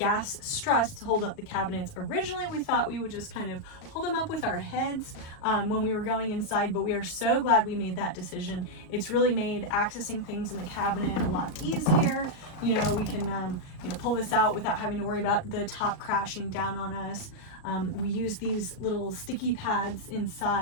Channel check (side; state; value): right; late; 38 ms